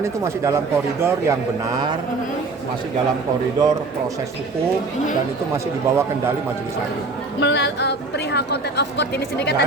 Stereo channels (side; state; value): left; quieter; 3.6 dB